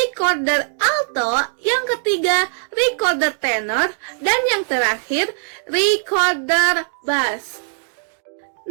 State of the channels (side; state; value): left; silent; digital silence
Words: alto, yang ketiga recorder tenor, dan yang terakhir recorder bass.